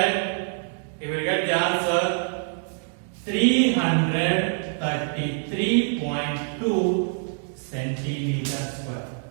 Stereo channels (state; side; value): silent; left; 58 dB below the other